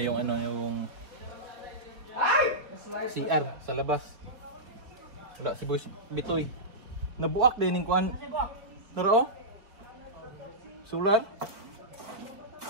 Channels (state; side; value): late; left; 4.6 ms